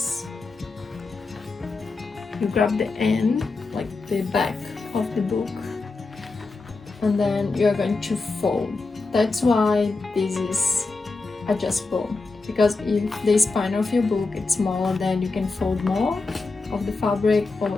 You grab the end, like the back of the book, and then you're going to fold. That's why this is adjustable, because if the spine of your book is smaller, then you can fold more of the fabric, or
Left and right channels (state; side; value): quieter; right; 3.8 dB